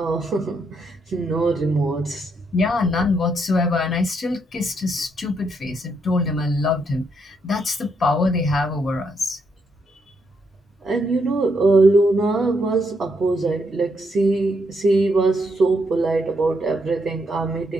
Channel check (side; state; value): both; normal; correlation 0.77